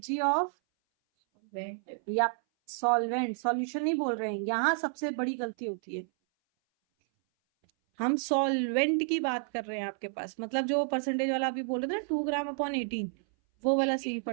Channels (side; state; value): left; silent; 57 dB below the other